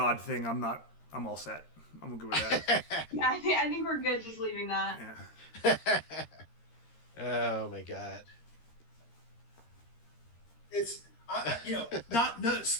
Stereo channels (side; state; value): right; late; 13 ms